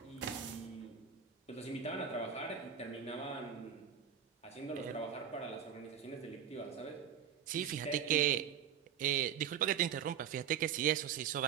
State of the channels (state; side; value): quieter; left; 8.3 dB